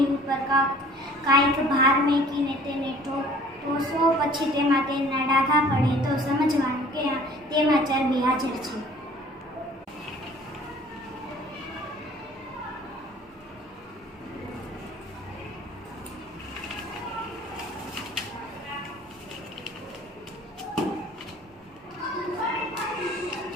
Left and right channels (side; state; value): both; normal; correlation 0.51